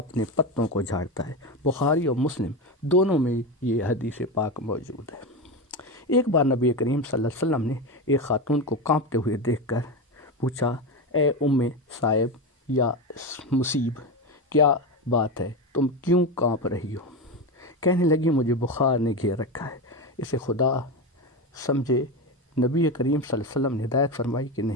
پتوں کو جھاڑتا ہے۔ بخاری اور مسلم دونوں میں یہ حدیث پاک موجود ہے۔ ایک بار نبی کریم صلی اللہ علیہ وسلم نے ایک خاتون کو کانپتے ہوئے دیکھ کر پوچھا، اے ام صائب یا مصیب، کیا بات ہے، تم کیوں کانپ رہی ہو؟ کہنے لگی، مجھے بخار نے گھیر رکھا ہے۔ اسے خدا سمجھے۔ نبی کریم صلی اللہ علیہ وسلم نے ہدایت فرمائی کہ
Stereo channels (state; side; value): normal; both; correlation 0.17